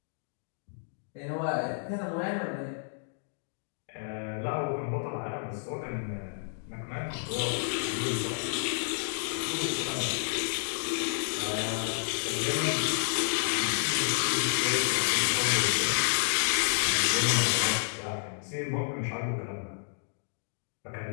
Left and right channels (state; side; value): silent; right; digital silence